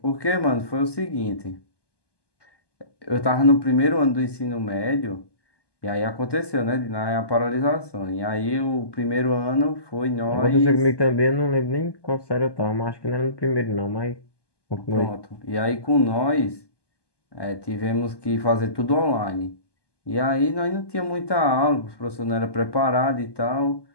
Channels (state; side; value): late; right; 1.2 ms